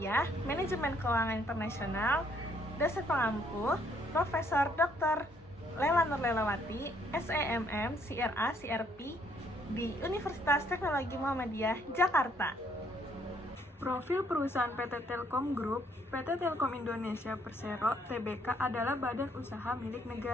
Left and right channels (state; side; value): normal; both; correlation 0.67